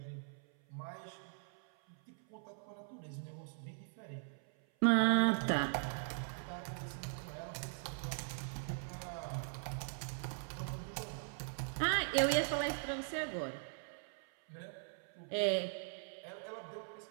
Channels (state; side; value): silent; left; 51 dB below the other